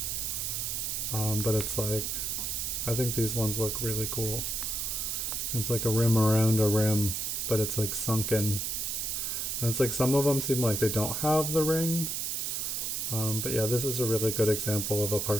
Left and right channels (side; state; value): right; noise; hiss, 1 dB below the sound